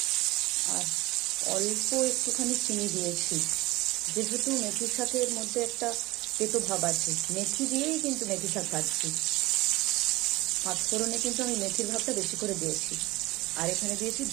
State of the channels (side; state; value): left; quieter; 20.8 dB